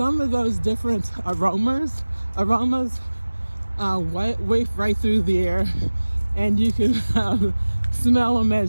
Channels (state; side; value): inverted; both; correlation -1.00